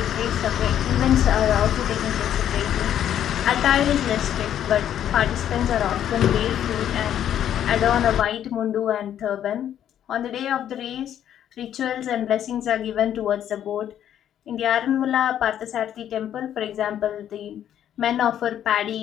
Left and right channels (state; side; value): quieter; right; 10.4 dB